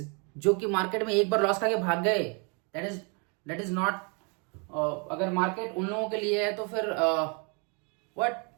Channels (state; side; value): quieter; left; 35.0 dB